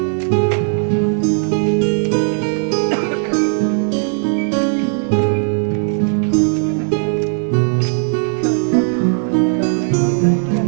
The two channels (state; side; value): silent; left; 58 dB below the other